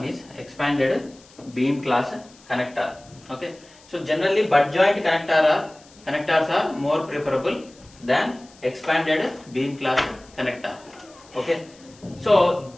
is expanded beam class connector. Okay, so generally butt joint connectors are more preferable than expanded beam class connector. Okay, so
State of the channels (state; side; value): noise; left; hiss, 26 dB below the sound